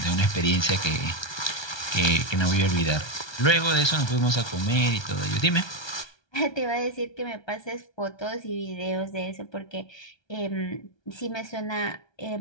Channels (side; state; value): right; late; 1.3 ms